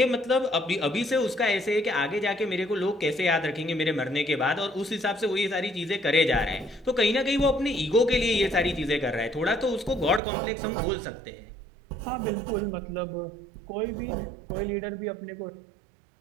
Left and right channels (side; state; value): left; drops out; at 10.2 s